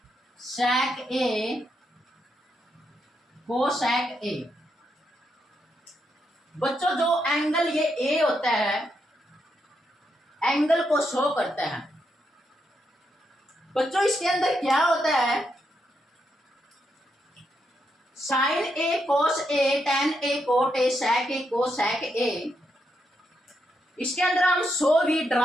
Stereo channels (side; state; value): both; normal; correlation 0.81